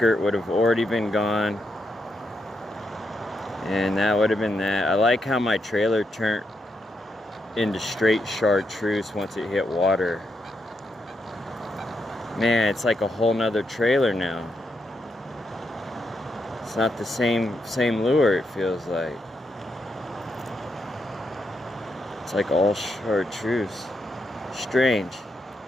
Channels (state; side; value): normal; both; correlation 0.82